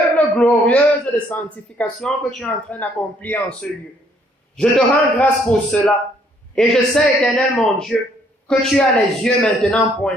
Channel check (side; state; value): both; normal; correlation 0.66